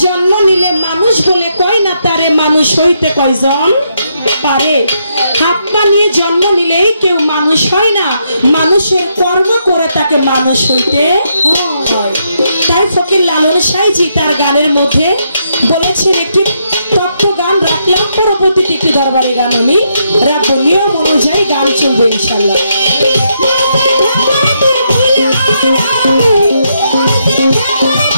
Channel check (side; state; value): both; inverted; correlation -0.78